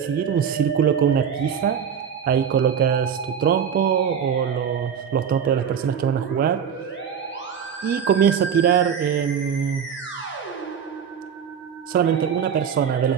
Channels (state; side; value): quieter; left; 7.7 dB